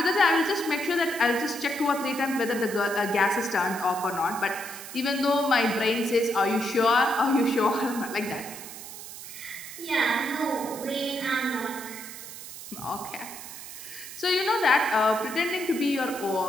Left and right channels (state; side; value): noise; right; hiss, 12 dB below the sound